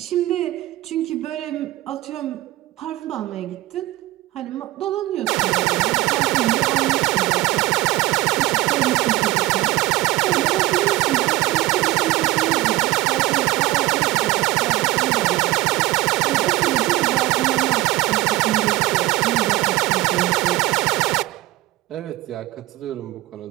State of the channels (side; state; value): left; quieter; 18.3 dB